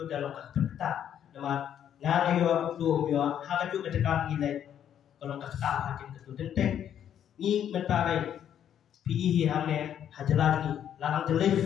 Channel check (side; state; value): right; quieter; 9.7 dB